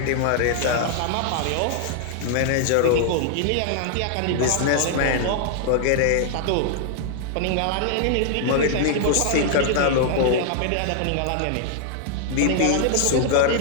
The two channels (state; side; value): different; both; correlation -0.01